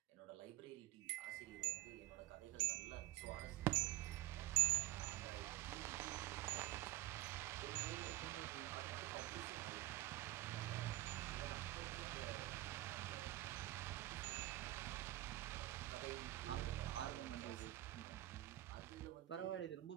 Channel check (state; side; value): quieter; left; 16.2 dB